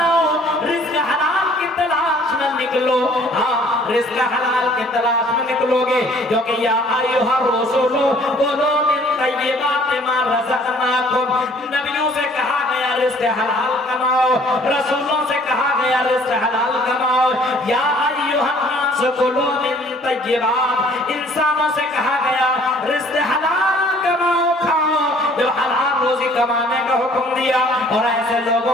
رزق حلال کی تلاش میں نکلو. ہاں، رزق حلال کی تلاش میں نکلو گے، کیونکہ یا ایھا الرسول کلوا من طیبات ما رزقناکم. نبیوں سے کہا گیا رزق حلال کماؤ، رسولوں سے کہا گیا رزق حلال کماؤ. یا ایھا الناس کلوا من طیبات، انسانوں سے کہا گیا رزق حلال کماؤ، کھاؤ. جو حلال روزی کمانے کا حکم دیا اور ایسے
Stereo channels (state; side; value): normal; both; correlation 0.56